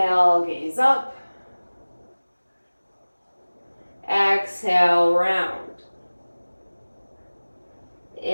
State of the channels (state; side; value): inverted; both; correlation -1.00